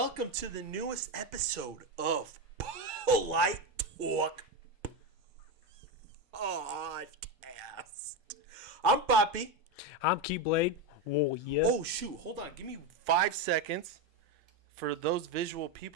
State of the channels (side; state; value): both; normal; correlation 0.13